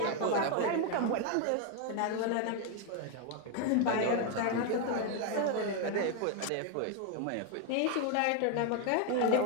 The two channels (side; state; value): both; different; correlation 0.01